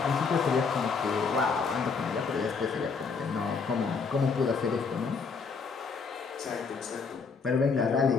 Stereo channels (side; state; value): right; quieter; 5.1 dB